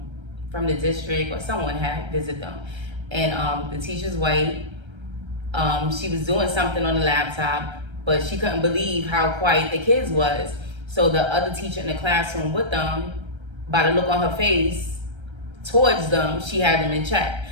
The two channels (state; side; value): late; left; 1.3 ms